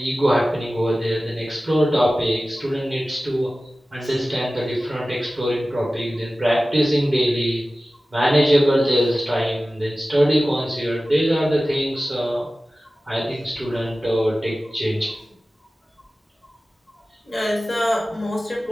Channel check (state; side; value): normal; both; correlation 0.96